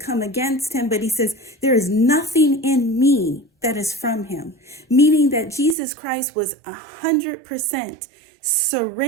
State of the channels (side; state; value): left; drops out; at 5.8 s